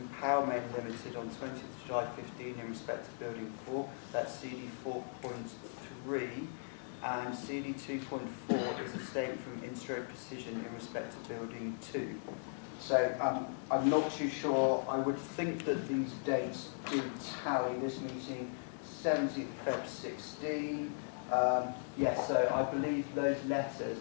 Powermain Limited on 20th of July 15 in respect to Building 4, that's CD 4.3, and CD 2.4 is a statement from Instro Precision in respect to Building 2. So I'm not too sure. I would think that these dates do tally. This meeting, 17th of Feb 16. Yes, so I believe those letters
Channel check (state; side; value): silent; right; digital silence